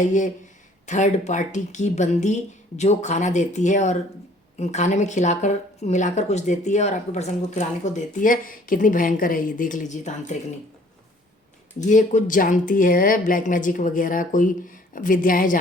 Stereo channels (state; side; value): normal; both; correlation 0.57